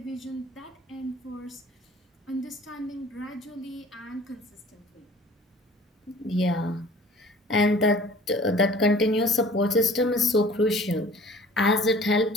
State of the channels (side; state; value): both; normal; correlation 0.49